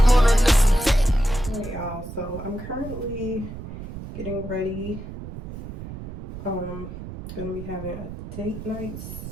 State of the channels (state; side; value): noise; right; rumble, 10 dB below the sound